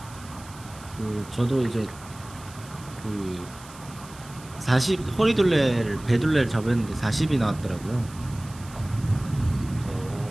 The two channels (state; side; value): noise; right; hiss, 20 dB below the sound